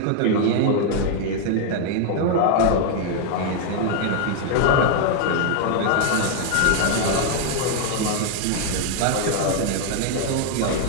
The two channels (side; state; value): both; different; correlation 0.00